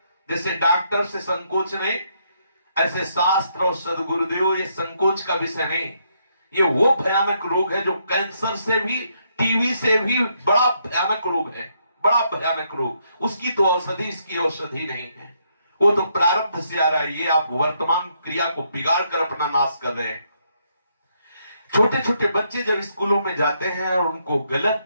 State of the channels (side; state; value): both; inverted; correlation -0.75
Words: जैसे डॉक्टर से संकोच नहीं, ऐसे शास्त्र और सदगुरुदेव ये संकोच का विषय नहीं। ये वो भयानक रोग है जो कैंसर से भी, टीबी से भी बड़ा भयानक रोग है, बड़ा भयानक रोग। उसकी तो औषधि, इसकी औषधि नहीं है। वो तो प्रारब्ध से आ रहा है। ये आप वर्तमान क्रिया को बिगाड़ कर अपना नाश कर रहे हैं। छोटे छोटे बच्चे जब स्कूलों में जाते हैं और उनको